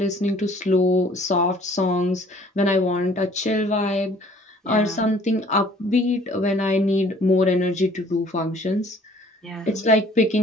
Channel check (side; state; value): both; normal; correlation 0.55